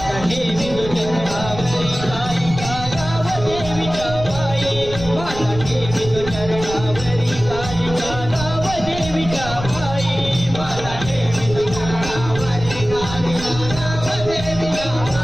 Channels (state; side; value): noise; right; rumble, 10 dB below the sound